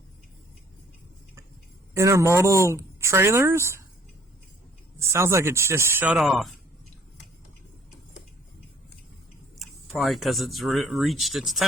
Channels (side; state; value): both; normal; correlation 0.60